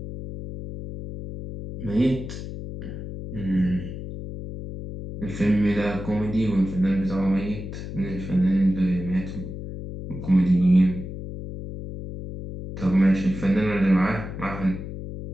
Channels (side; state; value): left; noise; hum, 9 dB below the sound